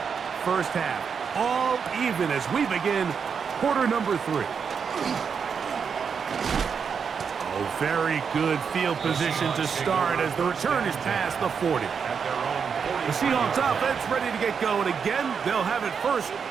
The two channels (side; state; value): left; quieter; 6.4 dB